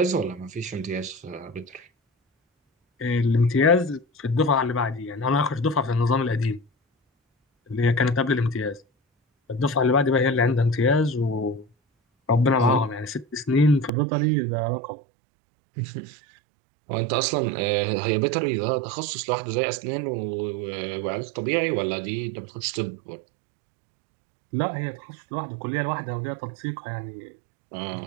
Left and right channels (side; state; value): left; drops out; at 13.9 s